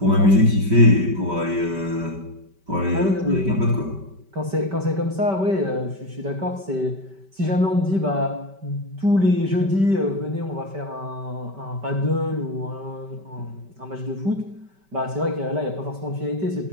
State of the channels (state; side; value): late; left; 5.2 ms